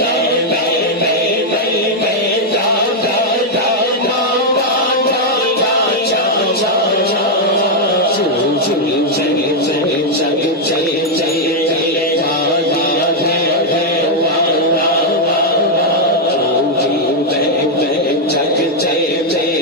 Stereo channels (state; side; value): normal; both; correlation -0.01